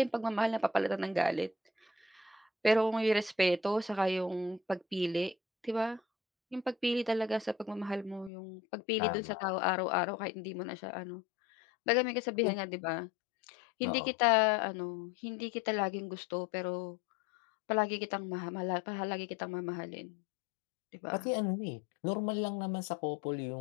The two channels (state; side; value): drops out; right; at 8.3 s